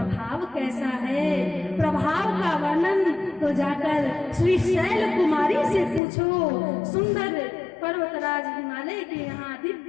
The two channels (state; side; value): drops out; right; at 6.0 s